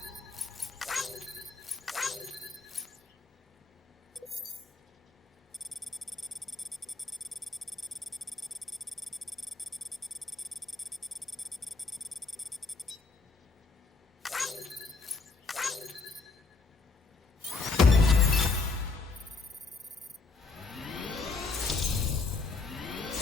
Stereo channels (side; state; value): right; quieter; 4.1 dB